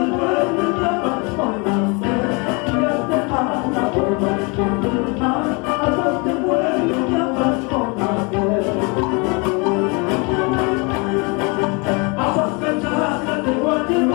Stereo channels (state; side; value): quieter; right; 30.8 dB